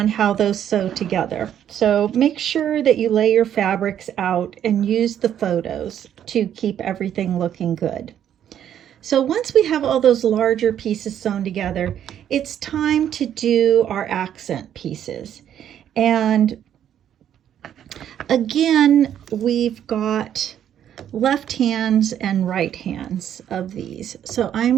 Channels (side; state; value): left; quieter; 10.0 dB